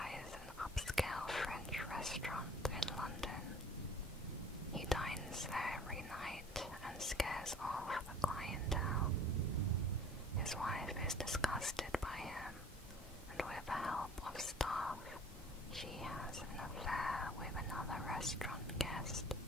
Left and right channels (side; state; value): both; normal; correlation 0.49